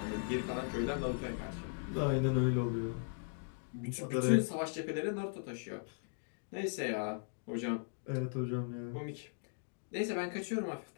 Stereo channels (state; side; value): silent; right; digital silence